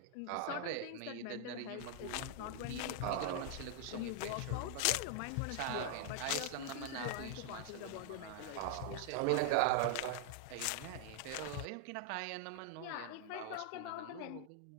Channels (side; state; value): both; different; correlation 0.00